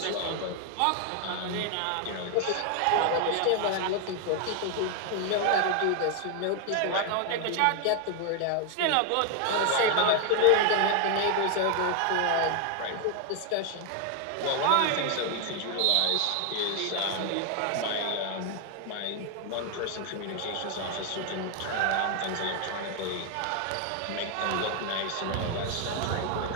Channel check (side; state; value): both; different; correlation 0.00